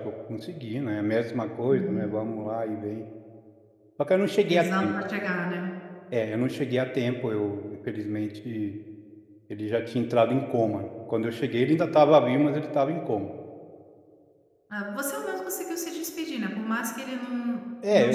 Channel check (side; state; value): both; identical; correlation 1.00